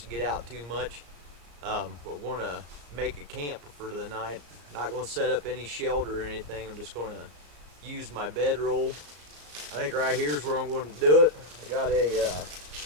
get out too much. We're going to make a camp for the night. Not going to set up any shelter or anything. I'm just going to use my bedroll. I think right here is where I'm going to do it. I got a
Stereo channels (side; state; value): left; late; 34 ms